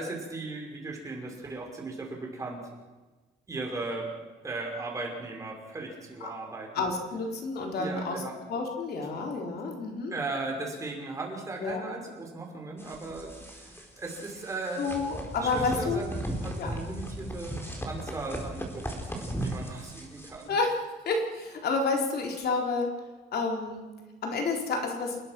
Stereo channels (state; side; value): normal; both; correlation 0.33